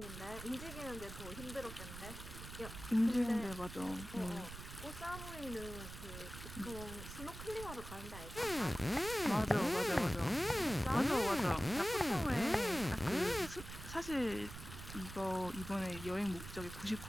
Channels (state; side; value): noise; right; rumble, 11 dB below the sound